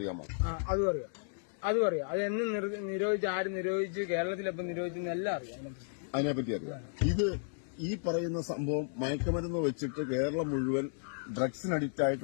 അതും അറിയാം. അത് എന്ന് നിരോധിച്ച്, ആര് നിരോധിച്ച്, കേരളത്തിലെപ്പം നിരോധിച്ചെന്ന് എല്ലാം അറിയാം. അതിനെപ്പറ്റി അറിയാം. ഇത് ഈ പറയുന്ന സംഭവം മയക്കുമരുന്ന് വെച്ചിട്ട് കേരളം മുഴുവൻ ഡ്രഗ്സിന് അഡിക്റ്റ്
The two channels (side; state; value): right; silent; digital silence